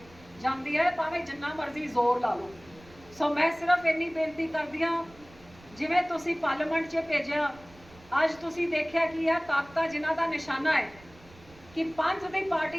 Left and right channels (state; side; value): noise; right; rumble, 24 dB below the sound